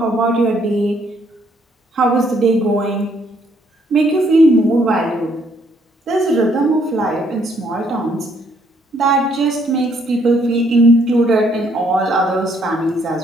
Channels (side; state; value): both; normal; correlation 0.68